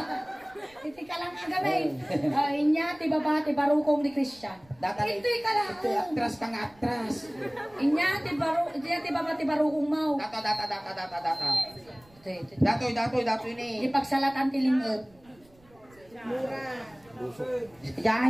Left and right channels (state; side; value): noise; right; rumble, 29 dB below the sound